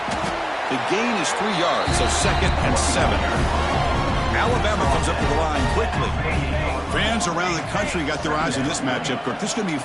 The gain is 3 yards, so 2nd and 7. Alabama comes up to the line quickly. Fans around the country got their eyes on this matchup, Kirk. This is going to be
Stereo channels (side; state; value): both; identical; correlation 1.00